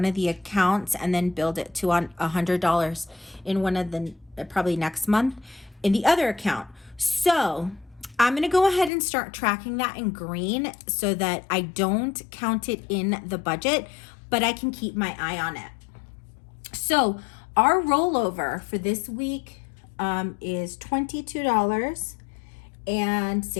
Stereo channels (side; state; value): right; drops out; at 8.9 s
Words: of the accounts, and then build it to $100 in one of the probably next month in the other account. So I'm going to go ahead and start tracking that in green so that I don't count it in the budget, but I can keep my eye on it. So our rollover for this week is